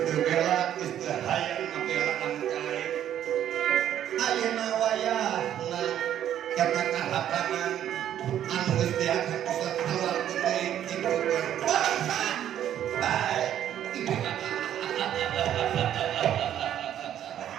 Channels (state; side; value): quieter; left; 10.8 dB